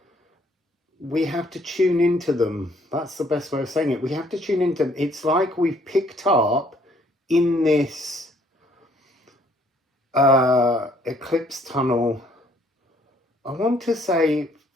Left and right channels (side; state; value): both; normal; correlation 0.64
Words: we have to tune into them. That's the best way of saying it. We have to tune into them. It's like we've picked up in this eclipse tunnel, I want to say